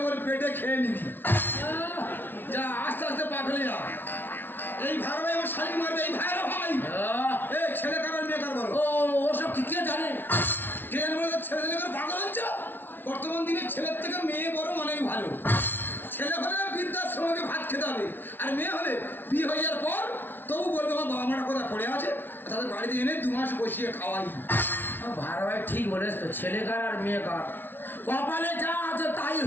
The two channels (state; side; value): late; right; 0.099 ms